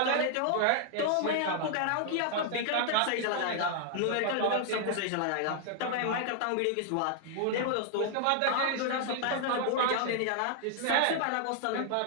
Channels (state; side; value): different; both; correlation -0.01